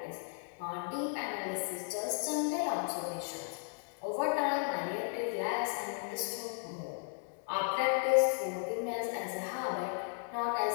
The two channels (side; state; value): right; silent; 54 dB below the other